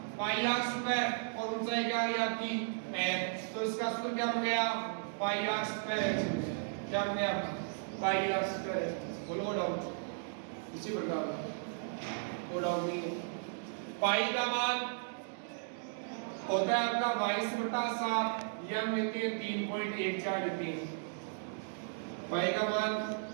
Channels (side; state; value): left; silent; digital silence